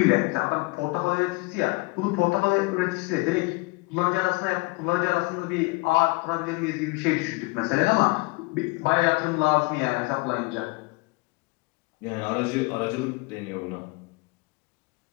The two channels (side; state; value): right; quieter; 26.3 dB